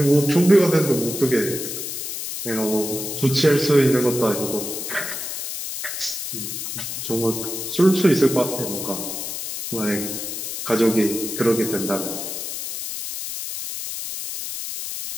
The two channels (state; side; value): noise; left; hiss, 6 dB below the sound